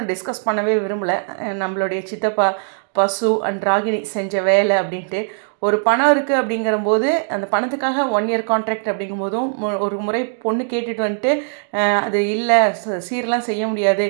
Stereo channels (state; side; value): silent; left; digital silence